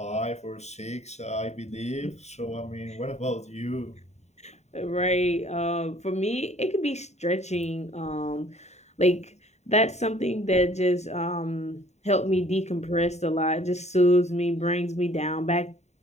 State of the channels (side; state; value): right; late; 0.32 ms